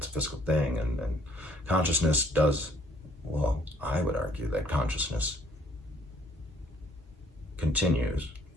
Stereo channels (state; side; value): normal; both; correlation 0.63